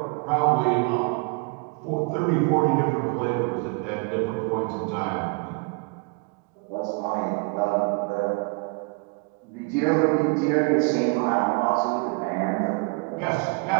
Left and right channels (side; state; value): left; quieter; 32.4 dB